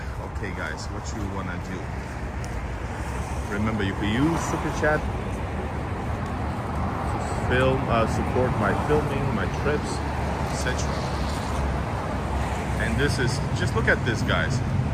Okay guys, what you wanna do? Remember, you can use Super Chat to film, support my filming, my trips, etc. And this is, just look at this guys.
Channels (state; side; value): identical; both; correlation 1.00